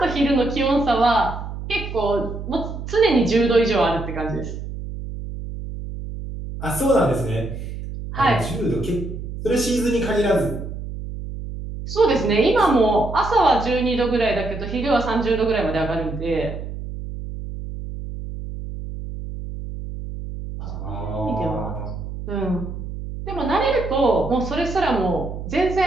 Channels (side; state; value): right; noise; hum, 8 dB below the sound